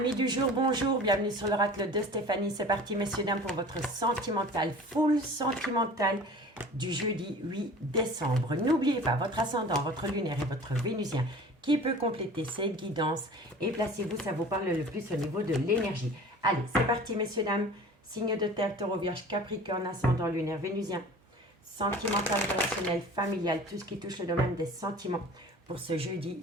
du jour, bonjour, bienvenue sur l'oracle de Stéphanie. C'est parti messieurs dames pour votre sentimental, full sentimental du jeudi 8 décembre. N'oubliez pas votre ascendant, votre lunaire et votre vénusien qui peut compléter cette guidance. Et placez-vous, ça vous parle le plus au niveau de l'énergie. Allez, c'est parti messieurs dames. Signe de terre, taureau, vierge, capricorne, ascendant, lunaire, vénusien. Sentimental, relationnel, familial, tout ce qui touche le domaine des sentiments pour ce jeudi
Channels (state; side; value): normal; both; correlation 0.42